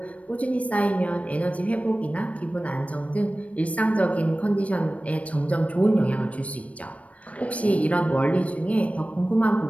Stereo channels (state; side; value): late; right; 0.065 ms